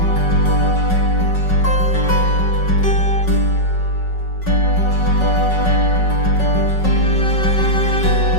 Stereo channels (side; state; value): right; late; 5.4 ms